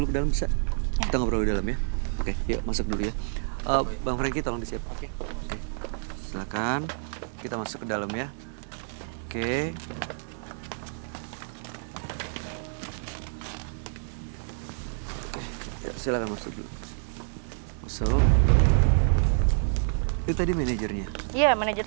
ke dalam bisa? Ya. Kita ngobrol di dalam ya. Oke, yuk masuk dulu ya. Bang Franky tolong disiap. Oke. Silakan. Kita masuk ke dalam ya. Oke. Ya, silakan masuk dulu. Masuk. Itu tadi manajernya. Iya,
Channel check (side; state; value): left; silent; 55 dB below the other